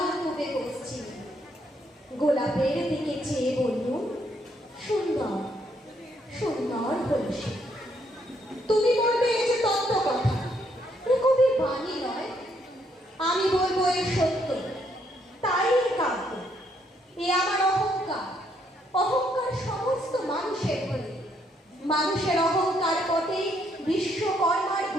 ডুবে পশ্চিম। গোলাপের দিকে চেয়ে বললুম, সুন্দর সুন্দর হল সে। তুমি বলবে এই যে তত্ত্ব কথা, এ কবির বাণী নয়। আমি বলবো এ সত্য, তাই এ কাব্য। এ আমার অহংকার, অহংকার সমস্ত মানুষের হলে। মানুষের অহংকার পথে বিশ্বকর্মার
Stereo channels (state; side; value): normal; both; correlation 0.72